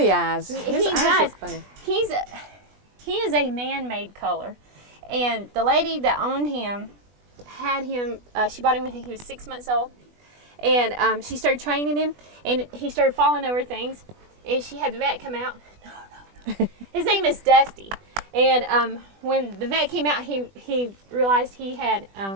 eyes. His eyes look funny. He is a man-made color. And the lady that owned him had him, she bought him when he was 6 months old. And she started training him, and he started falling over things. And she had the vet come out. No. His name is Dusty. And when the vet came out, he realized he had,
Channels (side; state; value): left; late; 20 ms